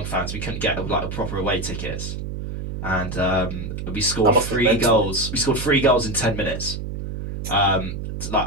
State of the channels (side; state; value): right; noise; hum, 6 dB below the sound